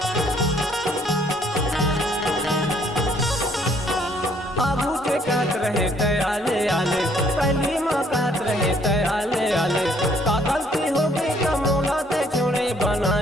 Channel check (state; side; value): normal; both; correlation 0.64